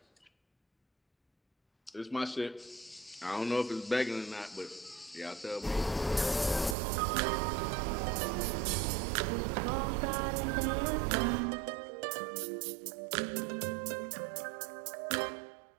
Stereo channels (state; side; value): drops out; left; at 6.8 s